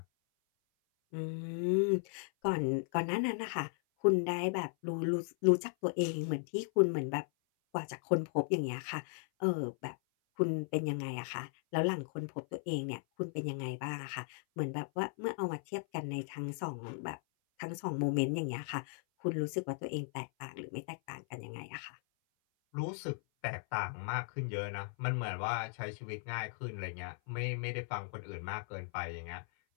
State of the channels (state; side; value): silent; right; 53 dB below the other